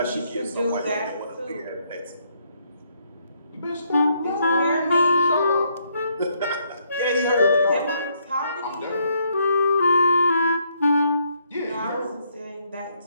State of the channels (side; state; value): both; inverted; correlation -0.72